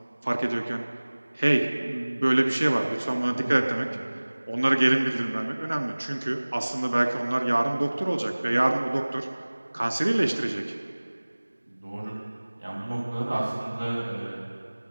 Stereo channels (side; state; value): both; inverted; correlation -1.00